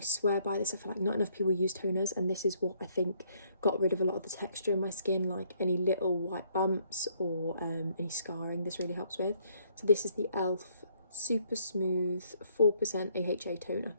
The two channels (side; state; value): both; inverted; correlation -0.67